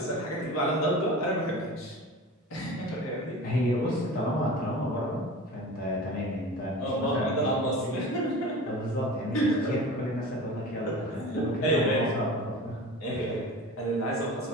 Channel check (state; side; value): normal; both; correlation 0.35